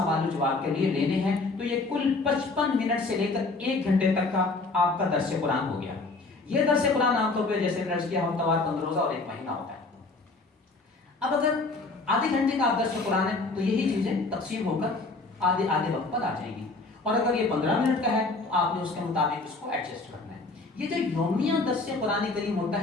و جواب کے لیے لینے ہیں تو یہ کل 55 منٹ سے لے کر 1 گھنٹے تک کا آپ کا درس قرآن ہو گیا. یہ درس قرآن عام طور پہ جیسے درس کیا ہفتہ 15 روزہ اور 1 مہینہ ہوتا ہے. اب اگر آدھے گھنٹے کا درس قرآن ہے تو یہی چیزیں تقسیم ہو کر آدھے وقت پر آ جائیں گی. اور اگر یہ 15 منٹ کا ہے تو آپ نے اس کے مطابق اس کو ایڈجسٹ کرنا ہے. یہ جو یومیہ درس قرآن کریم ہوتا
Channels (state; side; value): quieter; right; 3.5 dB